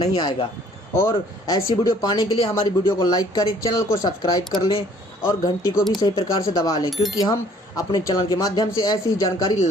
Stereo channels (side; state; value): both; normal; correlation 0.58